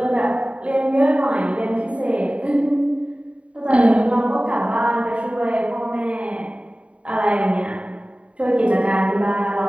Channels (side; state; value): left; late; 0.063 ms